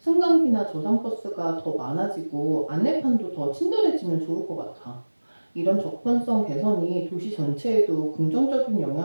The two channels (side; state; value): both; inverted; correlation -1.00